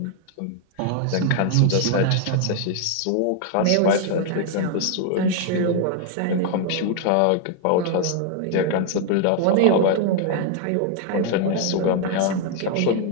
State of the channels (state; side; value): different; both; correlation 0.00